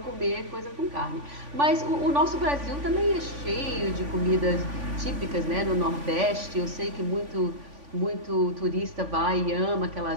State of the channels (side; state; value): left; late; 3.5 ms